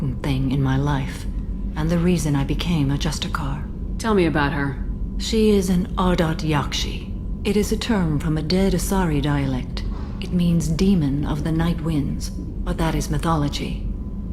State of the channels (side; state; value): both; identical; correlation 1.00